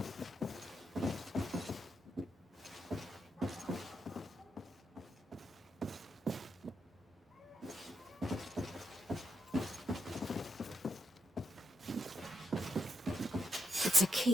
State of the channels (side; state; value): both; normal; correlation 0.83